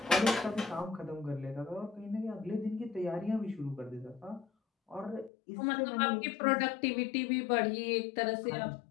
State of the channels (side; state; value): right; drops out; at 5.3 s